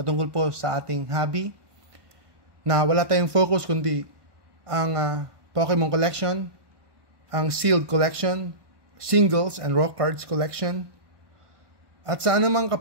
po sa ating hobby, na wala tayong focus kundi ang Pokemon collection, ang sealed collection, singles and raw cards collection, at sa anumang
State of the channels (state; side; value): late; left; 1.2 ms